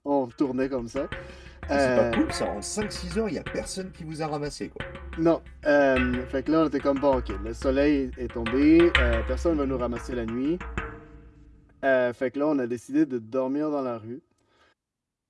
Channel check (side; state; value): both; identical; correlation 1.00